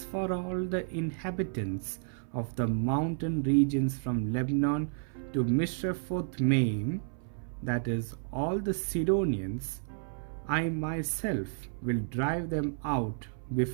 for all the inhabitants of the mountain regions from Lebanon to Mishrephoth-Maim, that is, all the Sidonians, I myself will drive them out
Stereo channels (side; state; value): left; silent; 57 dB below the other